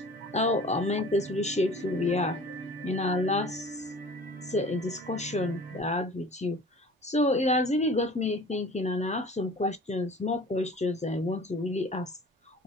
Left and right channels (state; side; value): normal; both; correlation 0.44